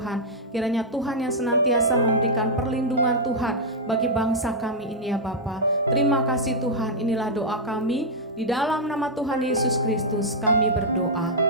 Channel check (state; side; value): normal; both; correlation -0.05